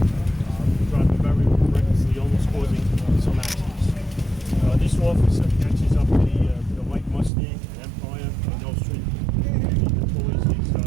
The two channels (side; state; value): left; drops out; at 7.3 s